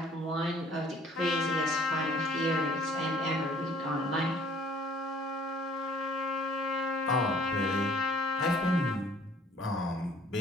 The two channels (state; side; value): normal; both; correlation 0.56